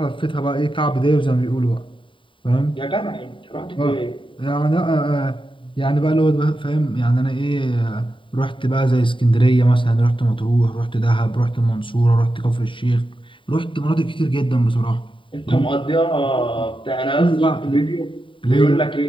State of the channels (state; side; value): late; right; 0.25 ms